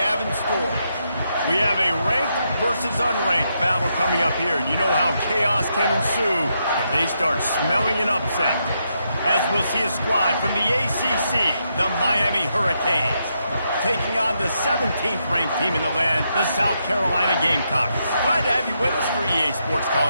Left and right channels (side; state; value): both; inverted; correlation -0.81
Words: have in store. We have a ranked versus unranked battle coming up here, and you know how chaos can ensue if they start smelling an upset. As we'll see a squad from the ACC, the Miami Hurricanes, taking on the 17th ranked team in the land, the South Carolina Gamecocks. Glad to have you with us for EA Sports